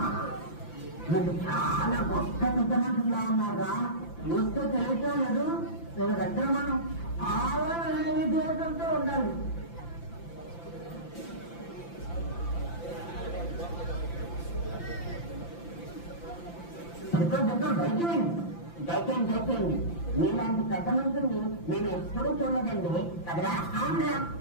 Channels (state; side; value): late; right; 5.9 ms